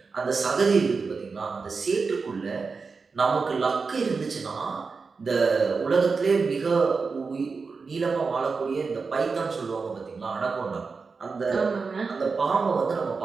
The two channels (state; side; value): quieter; left; 4.7 dB